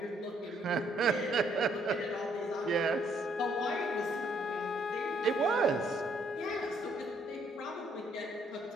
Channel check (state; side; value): normal; both; correlation 0.68